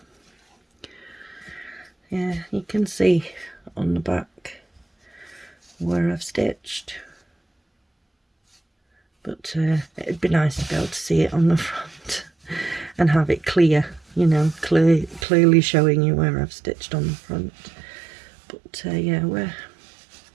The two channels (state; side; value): drops out; left; at 15.2 s